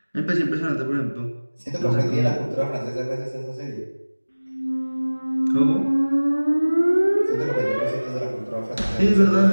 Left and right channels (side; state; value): both; inverted; correlation -1.00